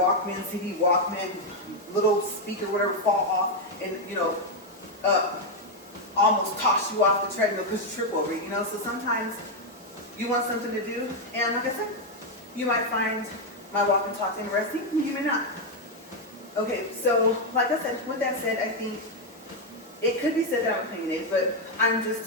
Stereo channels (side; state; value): both; normal; correlation 0.02